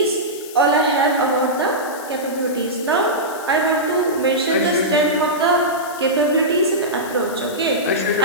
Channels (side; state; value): left; noise; hiss, 16 dB below the sound